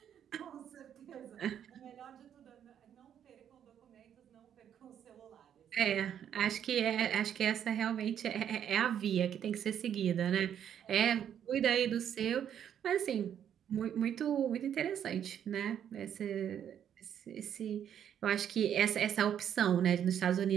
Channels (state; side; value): quieter; left; 9.3 dB